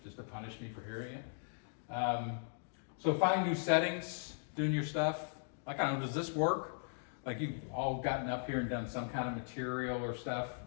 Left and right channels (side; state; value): right; silent; digital silence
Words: Just to punish me for hearing it? So finding new settings, doing your stuff. Like, I don't know, does this work? Like, you've all gotten up here and done some kind of material or stuff.